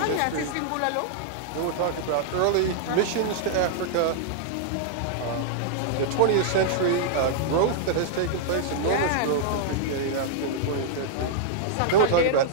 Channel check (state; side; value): different; both; correlation -0.01